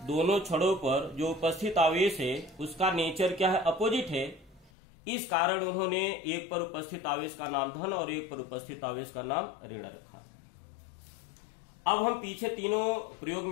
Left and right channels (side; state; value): right; drops out; at 4.7 s